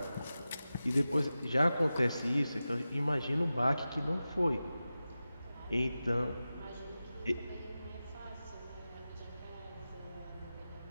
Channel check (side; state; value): both; inverted; correlation -0.94